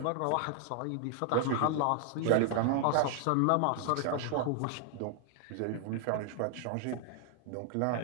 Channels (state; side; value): different; both; correlation 0.00